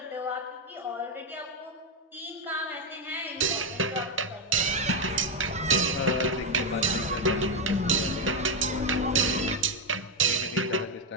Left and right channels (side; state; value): both; normal; correlation 0.04